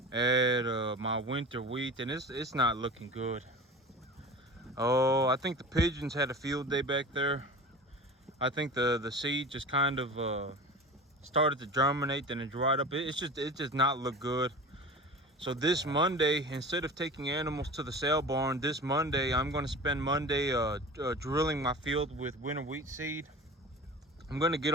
at my winter wheat, and it's not looking good. Oh, I think the pigeons had a field day back there. I think the seed just kind of started to germinate, then it dried up. It just not look good. So this Monday, instead of taking animals to the sale barn, this Monday I'm going to spend Monday drilling my field with winter wheat seed. I'm going to get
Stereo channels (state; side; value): normal; both; correlation 0.35